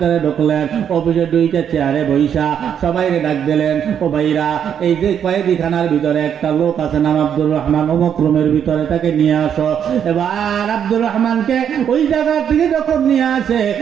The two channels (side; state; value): left; quieter; 8.6 dB